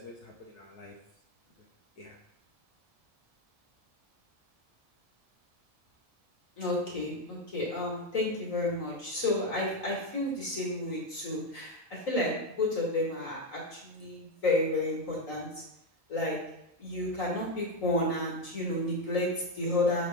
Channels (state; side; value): late; right; 1.7 ms